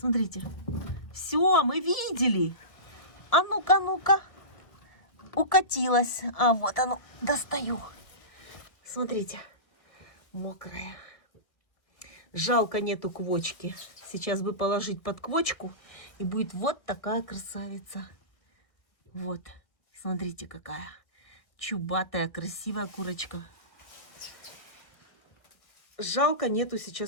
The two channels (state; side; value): late; right; 1.6 ms